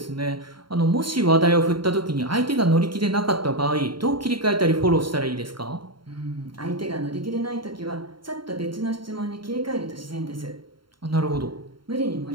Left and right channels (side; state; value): left; late; 0.73 ms